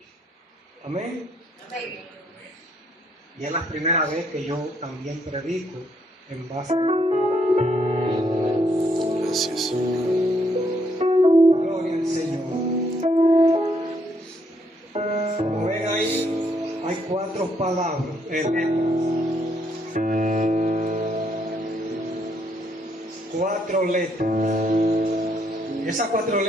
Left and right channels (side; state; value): both; normal; correlation 0.72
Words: Amén. Y es la primera vez que yo también predico en base a... Gracias. Gloria al Señor. Como ven ahí, hay 4 palabras, letras. 4 letras. Esas 4